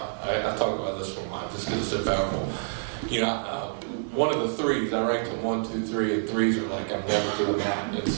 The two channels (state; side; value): silent; left; digital silence